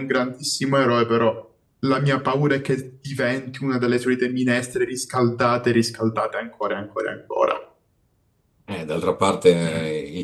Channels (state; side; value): identical; both; correlation 1.00